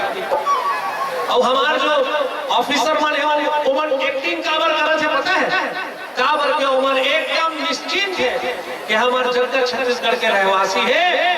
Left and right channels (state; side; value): identical; both; correlation 1.00